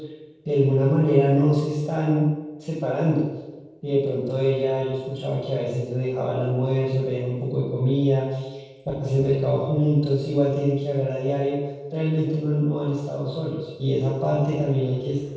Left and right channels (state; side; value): identical; both; correlation 1.00